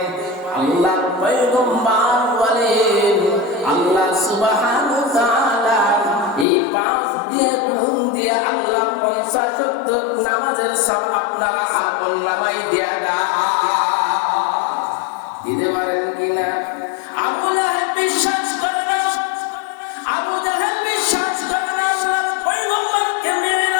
আল্লাহর পয়গম্বর বলেন আল্লাহ সুবহানাহু ওয়া তাআলা এই 5 দিয়ে গুণ দিয়ে আল্লাহ 50 ওয়াক্ত নামাজের সব আপনারা আমল নামায় দিয়া দিতে পারেন কিনা? আবু লাহাব বিশ্বাস করে না, আবু জাহেল বিশ্বাস করে না আল্লাহর পয়গম্বরকে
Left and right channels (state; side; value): drops out; right; at 6.5 s